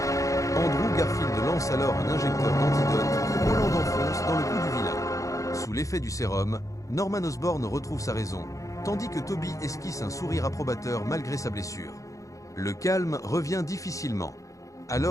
Andrew Garfield lance alors un injecteur d'antidote que Holland enfonce dans le cou du vilain. Sous l'effet du sérum, Norman Osborn retrouve sa raison, tandis que Tobey esquisse un sourire approbateur malgré sa blessure. Le calme revient difficilement.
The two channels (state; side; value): late; right; 0.16 ms